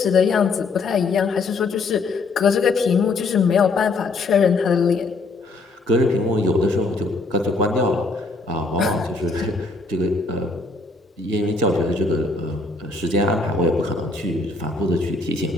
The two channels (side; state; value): right; quieter; 3.5 dB